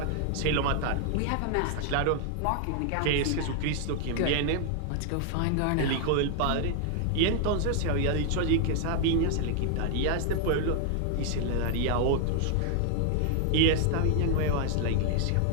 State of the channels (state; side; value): different; both; correlation 0.00